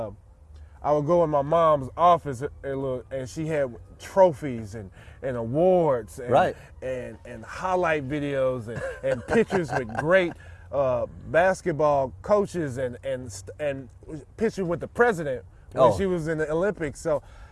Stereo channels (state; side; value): identical; both; correlation 1.00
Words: in my mom's office and she had trophies and awards and highlight videos and pictures with great basketball coaches and pictures with the president when she was in the Olympics. So,